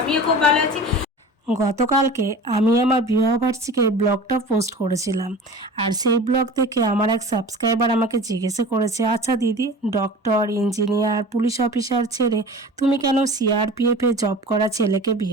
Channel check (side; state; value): both; normal; correlation 0.38